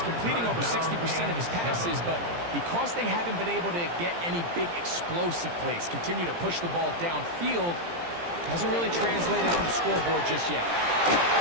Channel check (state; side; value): late; left; 17 ms